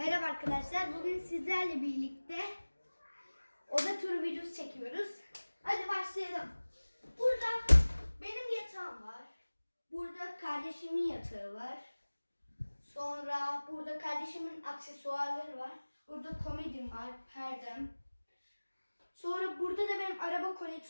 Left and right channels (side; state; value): both; inverted; correlation -1.00